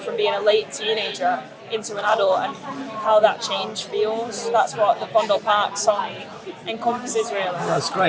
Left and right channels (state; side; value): identical; both; correlation 1.00